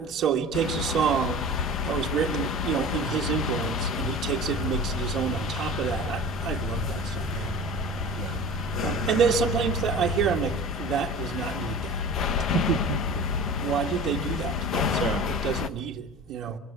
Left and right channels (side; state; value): both; normal; correlation 0.37